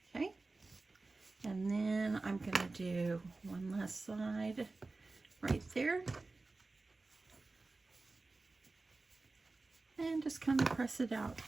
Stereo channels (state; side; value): quieter; left; 3.5 dB